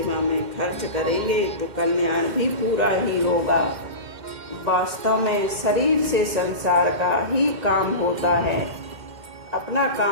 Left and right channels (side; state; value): left; late; 2.1 ms